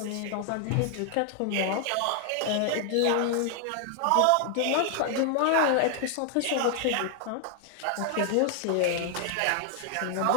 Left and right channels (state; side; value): different; both; correlation 0.00